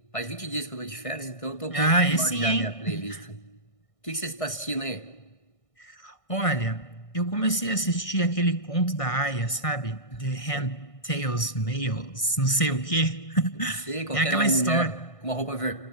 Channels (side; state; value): right; late; 1.6 ms